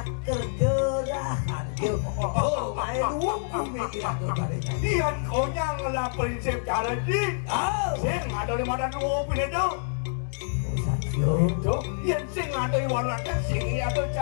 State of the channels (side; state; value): right; silent; digital silence